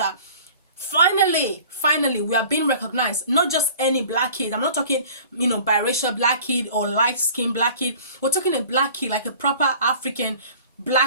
finally we are being recognized? Not just any black kid. I'm not talking, biracial black kid or light skin black kid. We're talking a black kid, like a proper African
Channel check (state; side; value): inverted; both; correlation -0.46